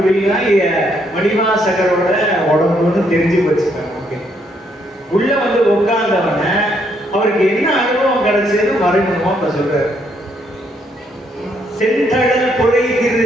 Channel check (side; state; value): both; normal; correlation 0.72